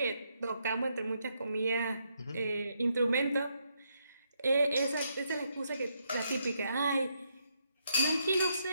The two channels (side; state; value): both; inverted; correlation -0.77